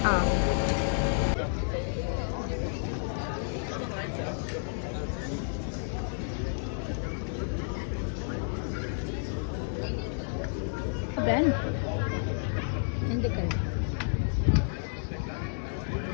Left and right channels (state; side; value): silent; right; digital silence